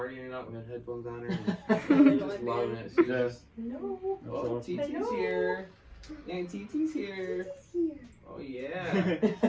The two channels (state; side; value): identical; both; correlation 1.00